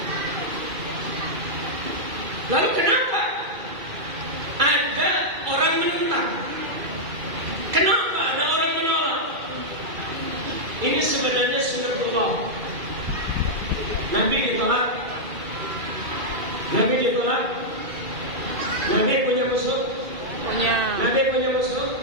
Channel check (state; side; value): late; left; 2.3 ms